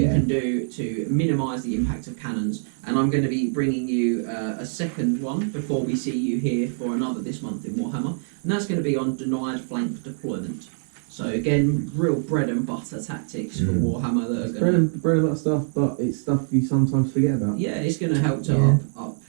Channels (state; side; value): silent; left; digital silence